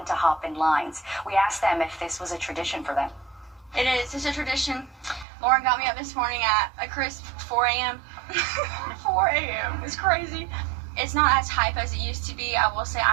to hop in lines. We asked them if this was a tradition for them. It is. It's a tradition. Lauren got me up this morning at a crisp 4 a.m. 4 a.m. It's crazy. It's not as hype as it used to be. I will say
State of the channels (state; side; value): drops out; left; at 5.2 s